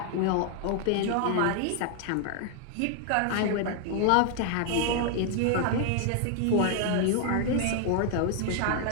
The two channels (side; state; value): both; different; correlation 0.00